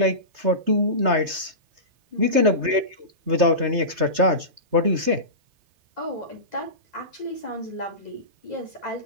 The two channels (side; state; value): left; late; 3.3 ms